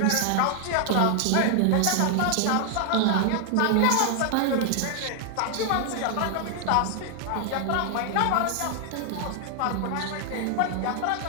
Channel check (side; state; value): both; different; correlation 0.00